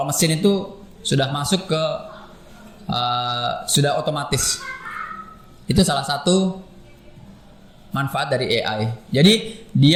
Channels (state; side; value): identical; both; correlation 1.00